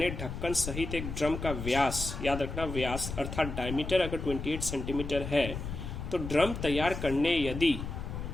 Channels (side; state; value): left; noise; rumble, 6 dB below the sound